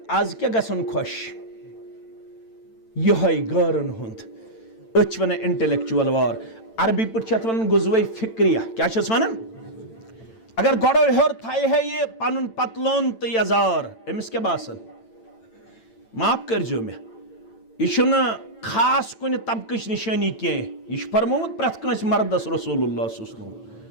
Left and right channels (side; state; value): right; late; 9.0 ms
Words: आज क्या गसन खुश यह गरन हुंद अच वन इंटेलेक्चुअल वार अरबी पट वन गुजवे फिक्रिया क्या वन अगर गोड़ो हेर थाय है ये पन पतलोन तो यजार अमिस क्या बासन माफ करजो मे यह खास कुन तबकच निशानी कह यह फरमोत प्रथ कंस मर्दस रसूलुल्लाह